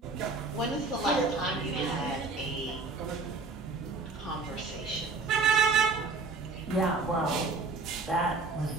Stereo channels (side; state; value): left; quieter; 4.0 dB